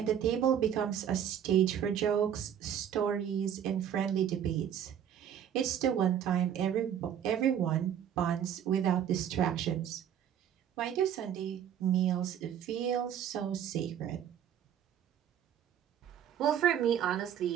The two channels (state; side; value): quieter; left; 9.5 dB